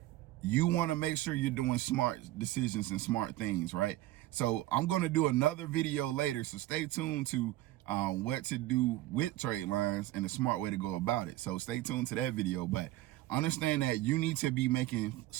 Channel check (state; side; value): quieter; left; 16.0 dB